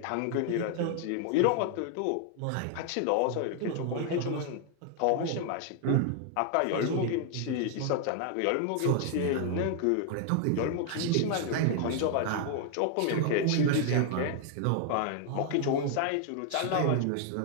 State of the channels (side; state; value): both; different; correlation 0.00